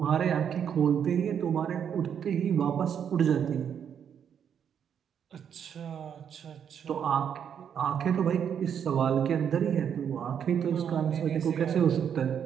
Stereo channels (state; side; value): quieter; left; 8.2 dB